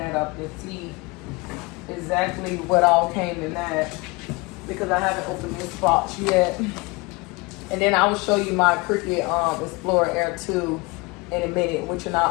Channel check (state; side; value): quieter; right; 25.9 dB